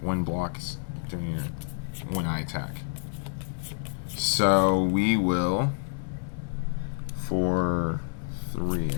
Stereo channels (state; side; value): silent; right; 59 dB below the other